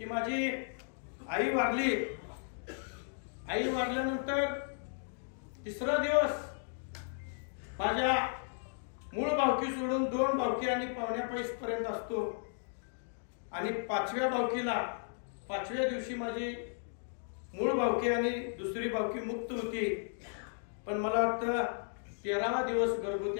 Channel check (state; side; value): silent; right; digital silence